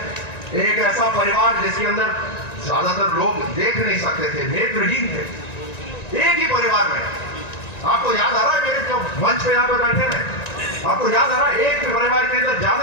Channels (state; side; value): late; right; 1.9 ms